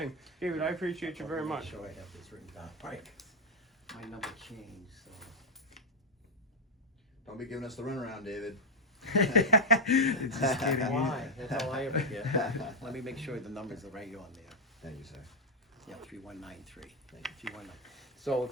David, I appreciate you very much. I'm sure I have this written down. Right. My number changed, so. Don't be giving us the runaround, David. Just kidding. Why? That's all I ever get. Let me make sure the numbers are right on there. Thank you, sir. Yeah, 3193. Thank you. 3193. So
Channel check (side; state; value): both; normal; correlation 0.01